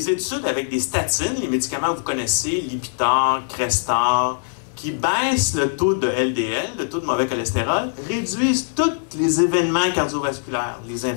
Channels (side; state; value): right; silent; digital silence